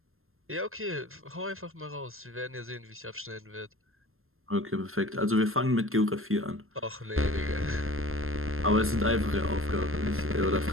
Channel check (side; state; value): left; late; 0.61 ms